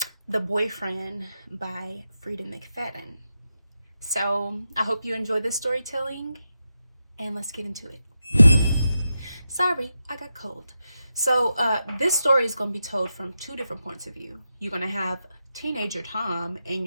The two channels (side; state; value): both; inverted; correlation -0.88